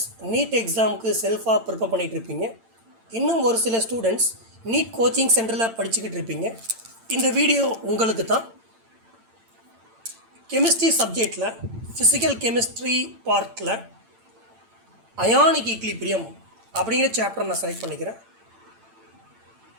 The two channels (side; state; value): left; late; 8.9 ms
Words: நீட் எக்ஸாமுக்கு செல்ஃபாக ப்ரிப்பேர் பண்ணிகிட்டு இருப்பீங்க. இன்னும் ஒரு சில ஸ்டூடெண்ட்ஸ் நீட் கோச்சிங் சென்டரில் படிச்சுக்கிட்டு இருப்பீங்க. இந்த வீடியோ உங்களுக்கு தான். கெமிஸ்ட்ரி சப்ஜெக்டில் ஃபிசிக்கல் கெமிஸ்ட்ரி பார்ட்டில் அயானிக் ஈக்லிபிரியம் அப்படிங்கிற சாப்டர் நான் செலக்ட் பண்ணிக்கிறேன்.